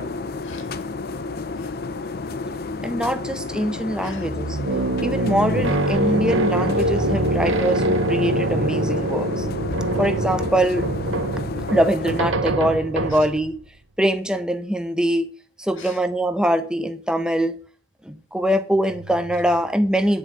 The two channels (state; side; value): normal; both; correlation 0.58